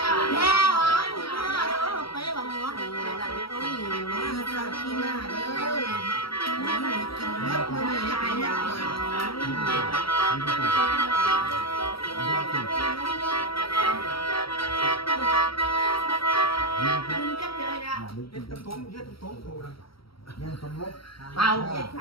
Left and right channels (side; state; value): right; late; 0.75 ms